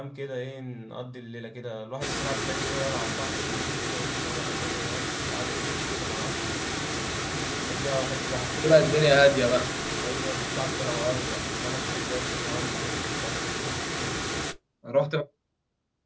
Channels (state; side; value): identical; both; correlation 1.00